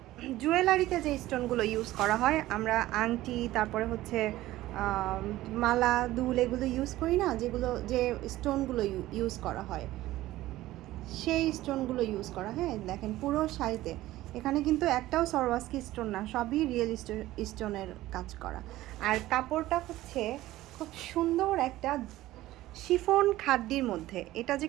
জুয়েলারিতে যে স্টোনগুলো ইউজ করা হয়, আমরা আংটি, তারপরে হচ্ছে মালা, দুল, এগুলো ইউজ করি না, যেগুলো যে স্টোনগুলো ইউজ করা হয় সেই স্টোনগুলো ইউজ করা। হ্যাঁ, দেখেন পুরো শাড়িতে এখানে কিন্তু একটাও সরওয়াস্কি স্টোন না, সবই রিয়েল স্টোনের কাজ করা। আর কাপড়টা হচ্ছে খুব সুন্দর একটা শিফন খাদ্যির মধ্যে। এটা যে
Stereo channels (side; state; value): left; quieter; 16.1 dB